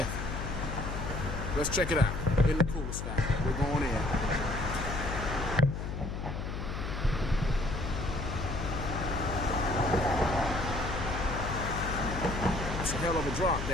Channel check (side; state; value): left; noise; hum, 5 dB below the sound